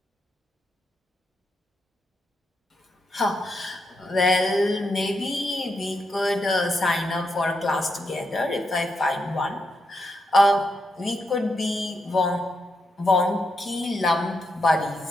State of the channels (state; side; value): normal; both; correlation 0.82